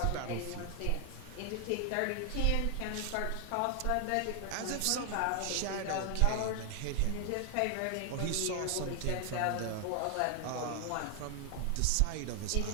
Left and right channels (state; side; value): different; both; correlation 0.00